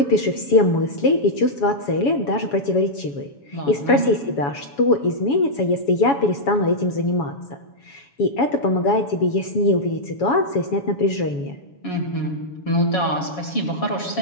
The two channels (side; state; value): right; late; 7.1 ms